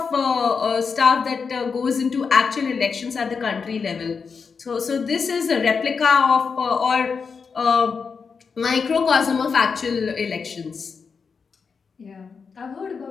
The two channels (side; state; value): right; quieter; 5.5 dB